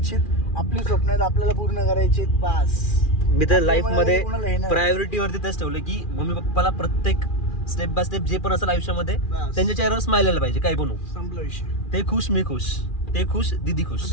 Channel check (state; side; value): late; right; 2.4 ms